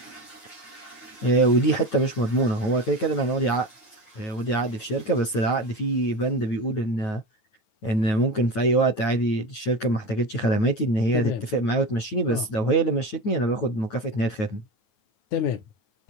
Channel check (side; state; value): right; late; 9.3 ms